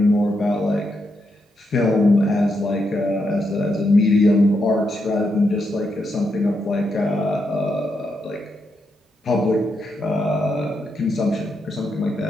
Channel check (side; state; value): both; normal; correlation 0.82